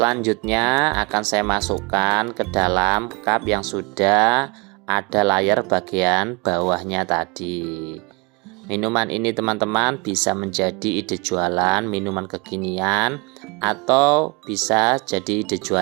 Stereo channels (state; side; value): quieter; left; 29.0 dB